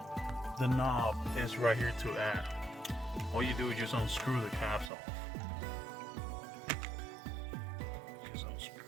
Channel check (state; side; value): drops out; left; at 4.9 s